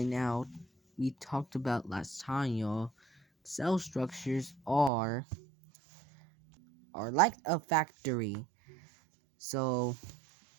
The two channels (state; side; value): drops out; left; at 4.9 s